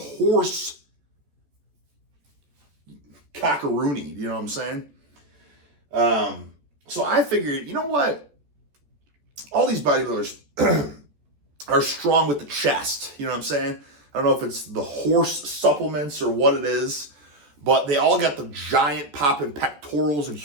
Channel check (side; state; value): left; late; 14 ms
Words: cockaroony, you know what I'm saying? So I figured, you know what? All these bodybuilders are strong with the chest, you know what I'm saying? I don't know if it's the horse supplements or what it is, but they all got the giant popping pectorals and